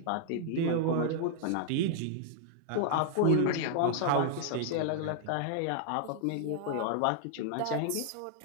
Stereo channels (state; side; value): different; both; correlation 0.00